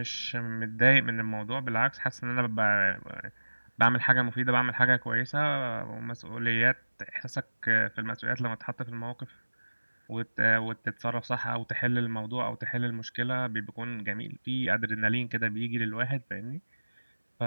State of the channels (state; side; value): inverted; both; correlation -1.00